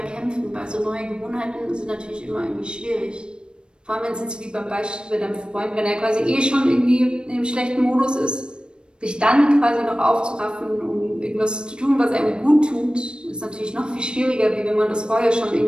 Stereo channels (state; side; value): late; left; 0.052 ms